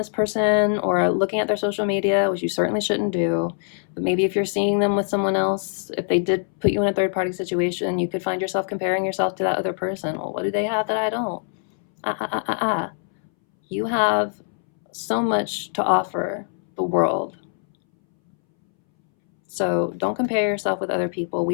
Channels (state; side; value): silent; right; 63 dB below the other